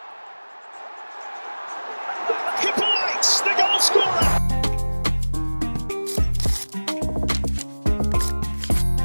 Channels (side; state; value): both; inverted; correlation -1.00